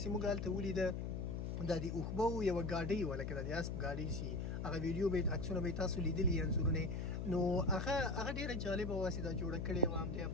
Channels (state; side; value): noise; left; hum, 3 dB below the sound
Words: چې موږ هلته ولیده دا د اوښبو یوه ګاډۍ وه، لکه د اسب ګاډۍ چې هغه ویډیو به عکسونه به یې تاسو لیدلي انځورونه، نو هغه ډېره جالبه وه چې دا جوړه کړې وه همدې